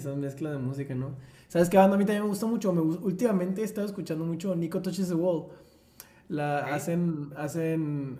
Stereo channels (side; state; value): both; identical; correlation 1.00